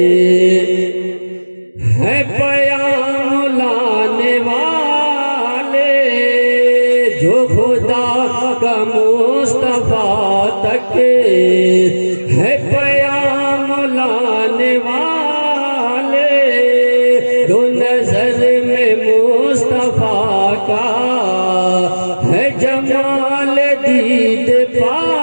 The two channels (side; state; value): both; inverted; correlation -1.00